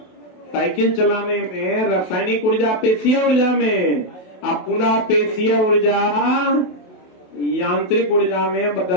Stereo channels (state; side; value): late; right; 27 ms